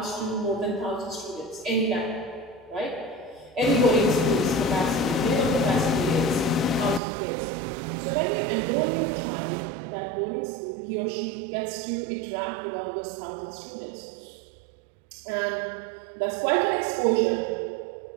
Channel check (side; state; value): left; drops out; at 7.0 s